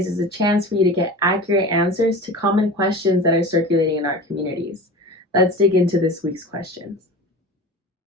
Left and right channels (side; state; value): both; normal; correlation 0.34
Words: is a chance for you to get accurate answers to common questions that are circulating in our communities. Let's dig into this week's questions.